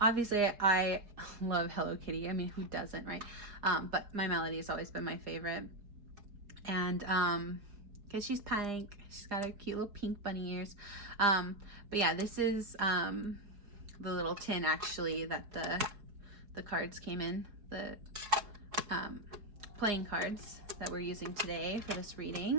obviously I love Hello Kitty. I mean, who doesn't, right? But My Melody has always been my favorite. And because she's pink, she's got her cute little pink bunny ears. But yeah, this is the little tin actually that the cards came in, the playing cards that we're using today for this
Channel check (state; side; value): late; left; 4.7 ms